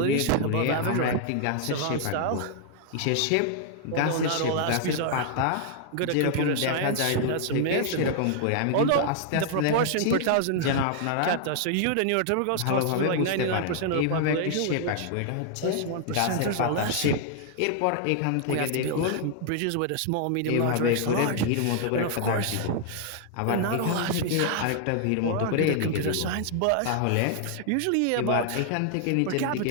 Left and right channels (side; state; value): both; different; correlation 0.00